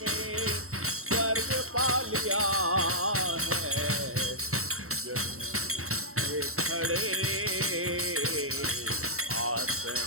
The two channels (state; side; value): late; left; 0.63 ms